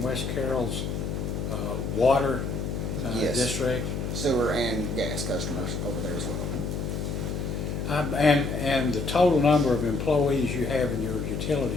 Carroll's water Yes. district? Sewer and gas customers over there as well. And the total number of employees you have in your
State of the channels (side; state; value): left; noise; hum, 3 dB below the sound